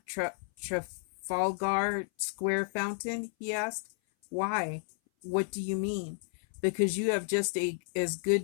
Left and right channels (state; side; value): silent; right; 56 dB below the other